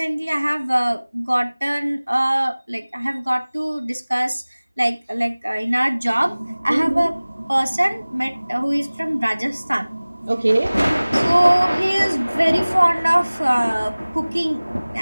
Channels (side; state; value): both; inverted; correlation -1.00